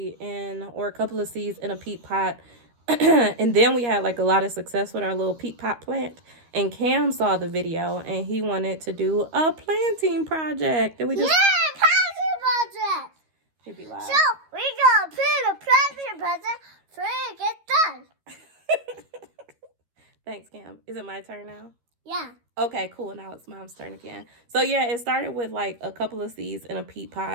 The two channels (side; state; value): left; late; 13 ms